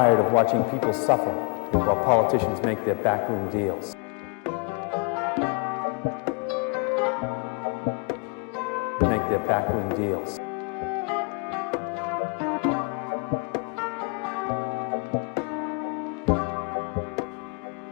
of watching people suffer while politicians make their backroom deals. Make their backroom deals.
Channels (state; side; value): quieter; right; 35.9 dB